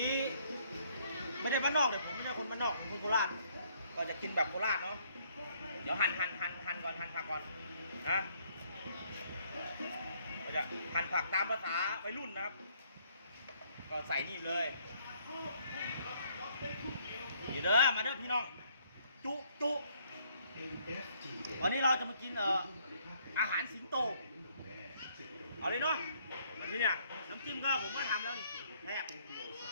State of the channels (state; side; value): inverted; both; correlation -0.66